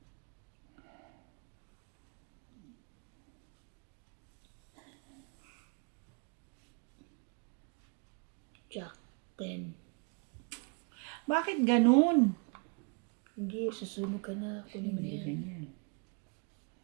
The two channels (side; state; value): left; quieter; 35.7 dB